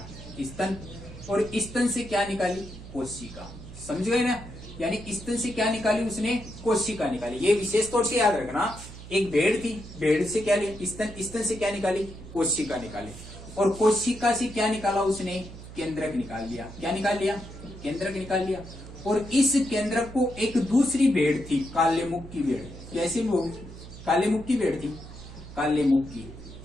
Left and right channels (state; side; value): noise; right; hum, 14 dB below the sound